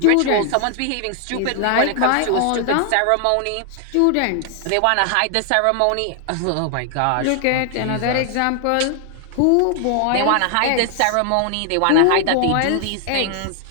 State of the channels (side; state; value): both; different; correlation 0.00